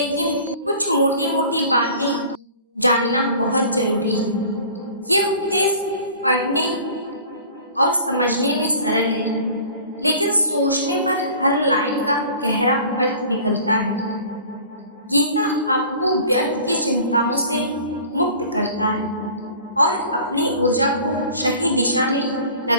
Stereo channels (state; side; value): inverted; both; correlation -0.45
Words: कुछ मोटी मोटी बातें जानना बहुत जरूरी है। ये उपदेश पढ़ने और समझने में सरल है, लेकिन सोचने पर हर लाइन का गहरा अर्थ निकलता है। गीता आपको व्यर्थ की चिंताओं से मुक्त करता है और अपनी ऊर्जा को सही दिशा में